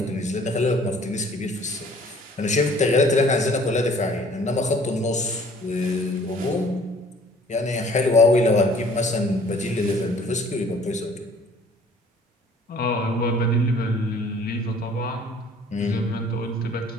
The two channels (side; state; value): both; normal; correlation 0.54